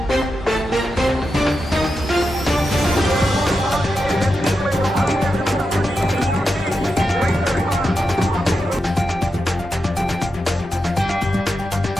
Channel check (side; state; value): both; normal; correlation 0.88